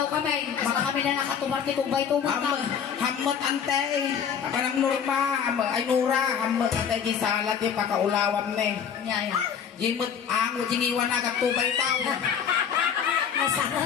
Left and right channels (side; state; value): right; quieter; 7.7 dB